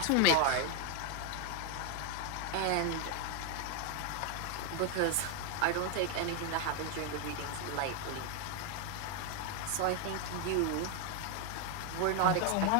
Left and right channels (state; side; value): different; both; correlation 0.01